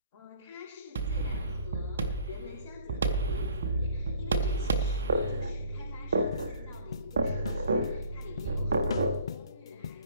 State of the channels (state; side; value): inverted; both; correlation -0.54